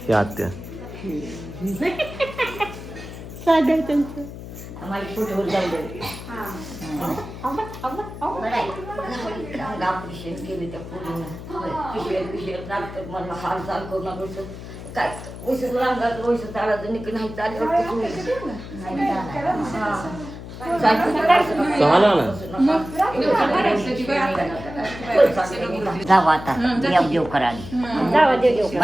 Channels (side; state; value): left; noise; hum, 12 dB below the sound